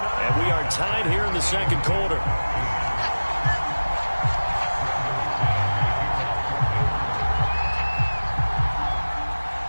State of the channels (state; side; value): inverted; both; correlation -1.00